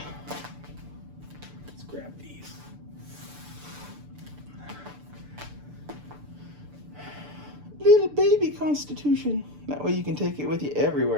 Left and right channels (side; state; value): left; late; 6.8 ms